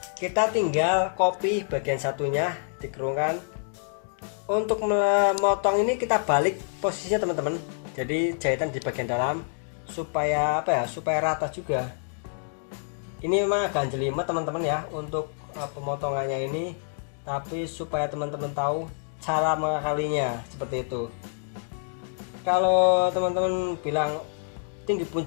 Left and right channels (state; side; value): silent; right; 60 dB below the other